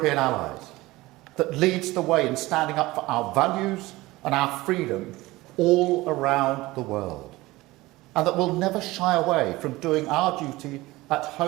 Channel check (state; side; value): quieter; left; 19.6 dB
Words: allies, that leads the way in standing up for our values and our freedom all around the world, and that will never shy away from doing our duty at